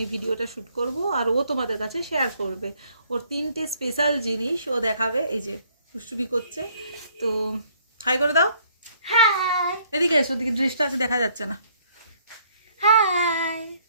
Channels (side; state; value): both; inverted; correlation -0.64